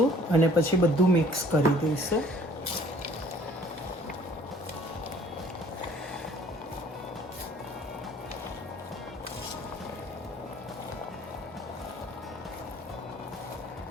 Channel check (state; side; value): normal; both; correlation 0.56